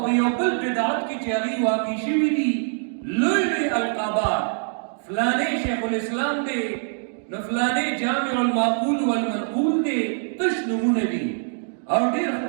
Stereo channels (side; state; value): left; silent; digital silence